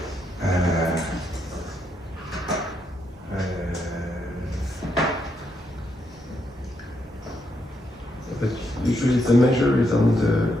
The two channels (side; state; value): both; normal; correlation 0.79